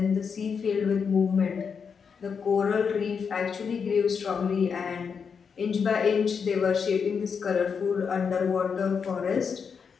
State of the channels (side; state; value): right; quieter; 6.2 dB